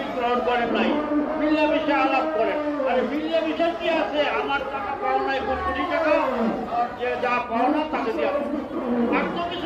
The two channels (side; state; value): both; identical; correlation 1.00